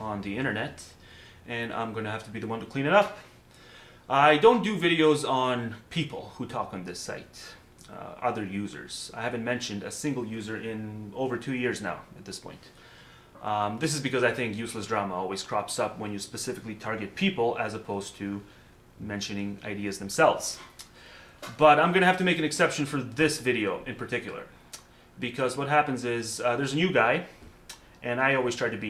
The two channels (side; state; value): both; identical; correlation 1.00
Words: the internet, and I'm going to have to be the one to clean it up. I don't do videos on people who talk on this site, other users. I haven't mentioned a single user in over 2 years now at this point. This is because I think useless drama always crops up when you specifically target people as opposed to mentioning ideas themselves. But I'm going to have to make an exception for this video in particular, because what happens is there's a new guy, and I always try to